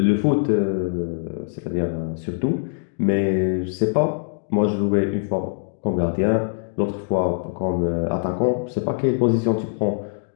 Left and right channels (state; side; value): silent; right; digital silence